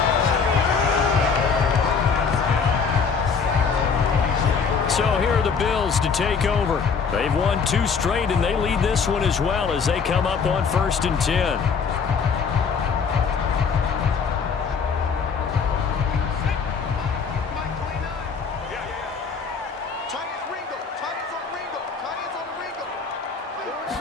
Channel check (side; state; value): right; quieter; 5.7 dB